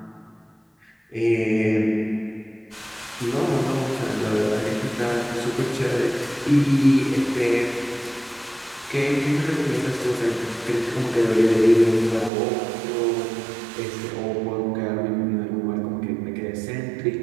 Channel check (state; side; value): drops out; left; at 12.3 s